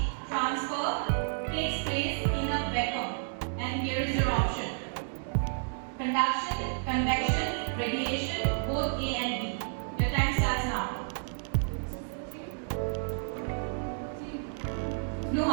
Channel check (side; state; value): left; silent; digital silence